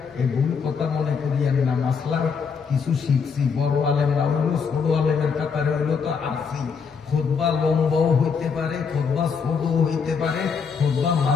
এই ভুল কথা মনে করিয়েন না। মাসলার কিছু শিখছি, বড় আলেম না হইলো, ছোট আলেমের কাতারে হইলো তো আসি। খুতবা লম্বাও হইতে পারে, খুতবা ছোটও হইতে পারে, খুতবা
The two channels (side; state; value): right; quieter; 5.9 dB